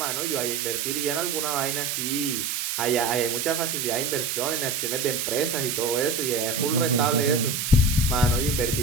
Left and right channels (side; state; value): right; noise; hiss, 1 dB below the sound